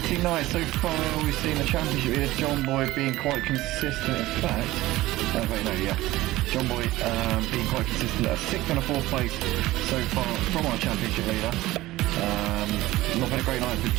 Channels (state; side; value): quieter; left; 17.4 dB